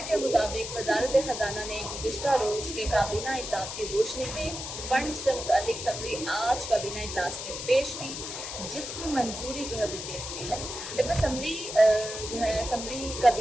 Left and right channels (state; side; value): noise; left; hiss, 7 dB below the sound